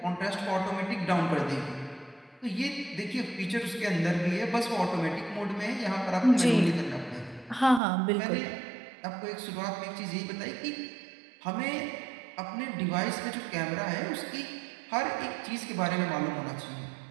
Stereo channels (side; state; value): left; drops out; at 7.8 s